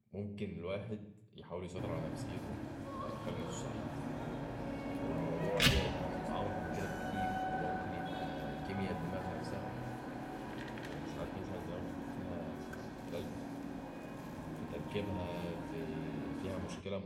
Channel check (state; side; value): identical; both; correlation 1.00